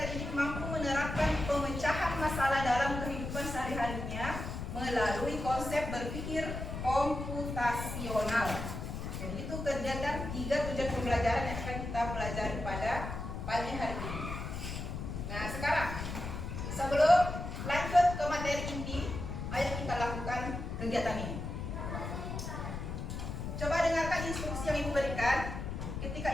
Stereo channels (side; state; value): left; noise; rumble, 5 dB below the sound